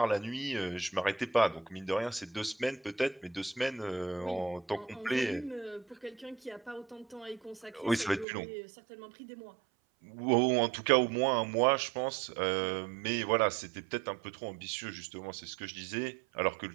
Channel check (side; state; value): left; drops out; at 8.2 s